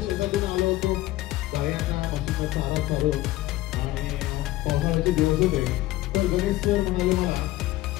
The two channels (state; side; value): quieter; right; 17.0 dB